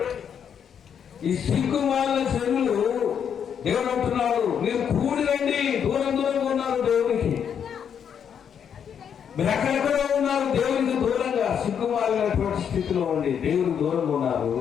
ఈ సిగ్గుమాలిన జనులు దేవుడు అంటున్నాడు, మీరు కూడి రండి. దూరం దూరంగా ఉన్నారు దేవునికి, మీరు ఎక్కడెక్కడో ఉన్నారు దేవునికి దూరంగా, సిగ్గుమాలినటువంటి స్థితిలో ఉండి దేవునికి దూరంగా ఉన్నారు.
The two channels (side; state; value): right; quieter; 8.0 dB